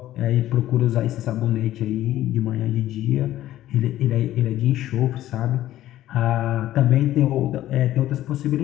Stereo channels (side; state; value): right; quieter; 13.8 dB